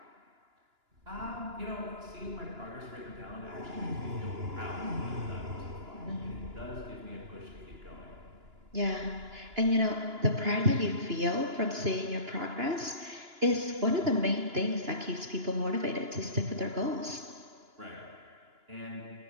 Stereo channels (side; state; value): left; late; 2.9 ms